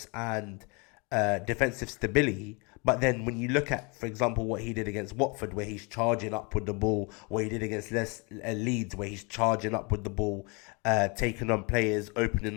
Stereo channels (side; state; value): right; quieter; 30.7 dB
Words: and defensive stability. But then when you look at, for example, what he did against Watford, where he's charging up with the ball, what he did against Leeds, where he's charging up with the ball, taking on players,